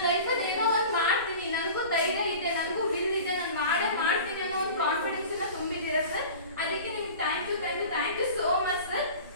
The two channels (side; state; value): both; inverted; correlation -0.39